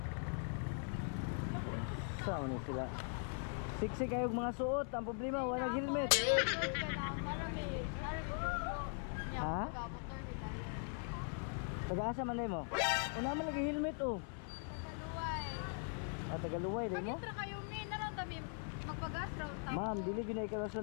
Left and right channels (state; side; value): silent; right; 50 dB below the other